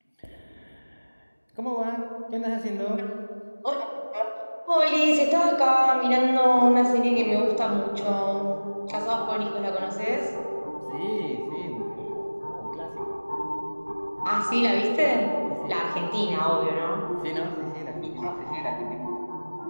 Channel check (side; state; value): both; inverted; correlation -1.00